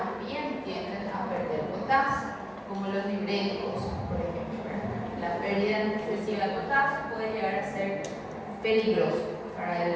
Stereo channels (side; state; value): both; identical; correlation 1.00